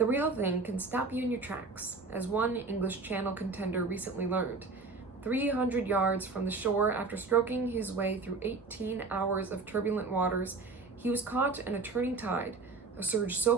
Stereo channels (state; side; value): quieter; left; 4.0 dB